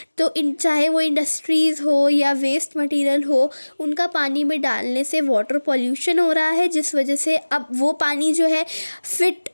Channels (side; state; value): both; inverted; correlation -1.00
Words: तो चाहे वो इंडस्ट्रीज़ हो या वेस्ट मटेरियल हो, उनका पानी में डालने से वाटर पॉल्यूशन हो रहा है, जिस वजह से अब वो पानी जो है फिट